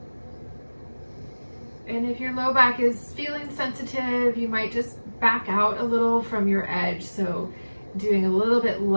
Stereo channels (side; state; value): both; inverted; correlation -1.00